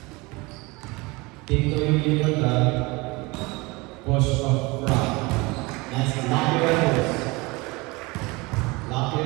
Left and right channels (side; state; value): left; quieter; 24.6 dB